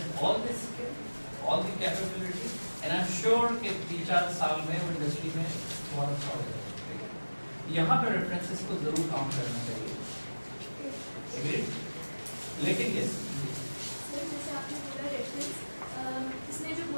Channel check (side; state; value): both; inverted; correlation -1.00